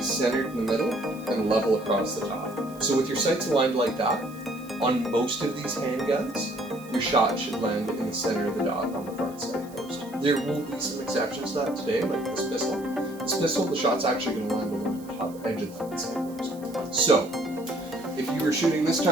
centered in the middle and level across the top. So with your sights aligned like that, on most of these handguns, your shot should land in the center of the dot on the front sight post. There will be some exceptions to that today, like this pistol. This pistol, the shot's actually going to land along the top edge of the front sight post. So, if you were shooting this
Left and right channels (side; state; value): right; noise; hiss, 23 dB below the sound